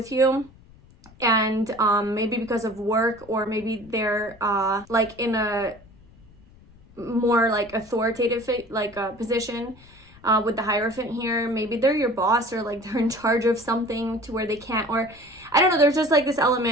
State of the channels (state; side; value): noise; left; rumble, 25 dB below the sound